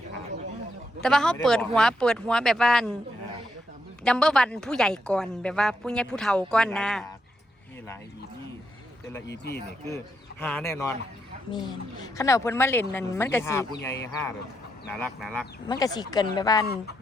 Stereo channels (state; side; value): normal; both; correlation 0.80